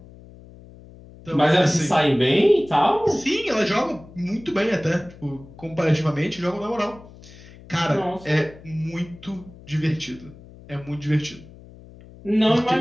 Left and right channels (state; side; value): noise; left; hum, 20 dB below the sound